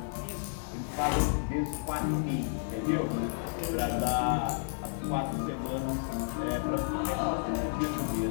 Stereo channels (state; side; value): silent; right; digital silence